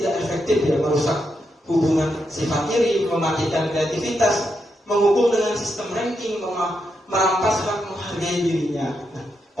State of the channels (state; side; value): normal; both; correlation 0.83